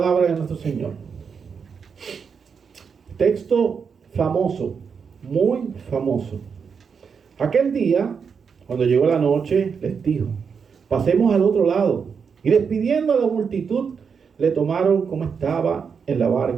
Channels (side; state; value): left; quieter; 6.2 dB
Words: de nuestro Señor. Texto famoso, muy famoso. Aquel día, cuando llegó la noche, les dijo: pasemos al otro lado. Y despidiendo a la multitud, le tomaron como estaba en la